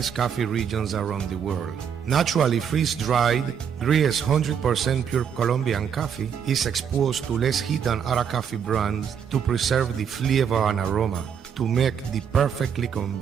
coffee regions around the world. Naturally freeze-dried, Gris 100% pure Colombian coffee is exposed to less heat than other coffee brands to preserve the flavor and aroma to make the perfectly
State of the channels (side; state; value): left; quieter; 7.7 dB